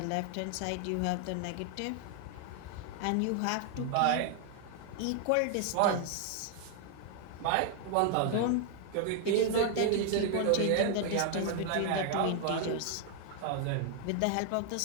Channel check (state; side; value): different; both; correlation 0.00